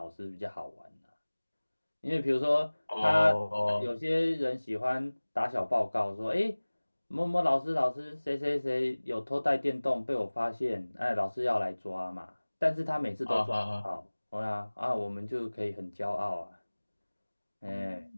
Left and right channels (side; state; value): both; inverted; correlation -1.00